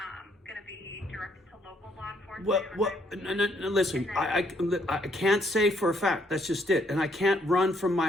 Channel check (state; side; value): normal; both; correlation 0.70